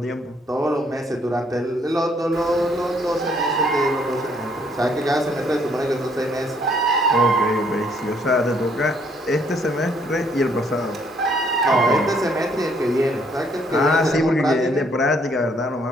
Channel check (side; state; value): both; normal; correlation 0.66